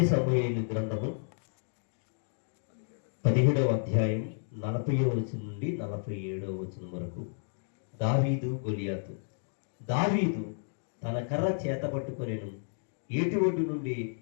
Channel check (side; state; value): right; silent; digital silence